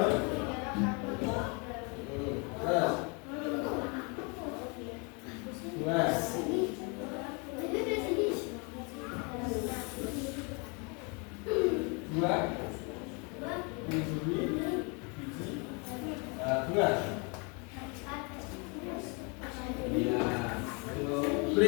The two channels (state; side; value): quieter; right; 32.6 dB